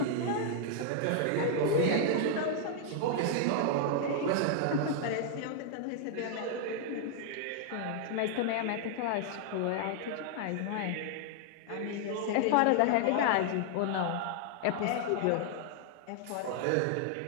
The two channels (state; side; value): different; both; correlation 0.00